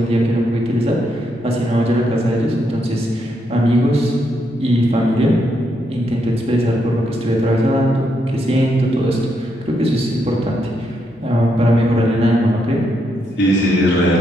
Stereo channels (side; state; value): both; normal; correlation 0.79